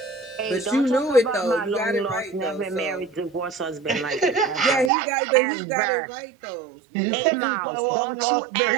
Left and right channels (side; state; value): left; drops out; at 4.9 s